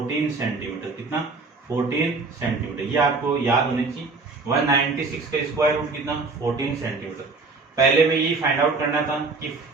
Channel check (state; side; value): quieter; left; 4.0 dB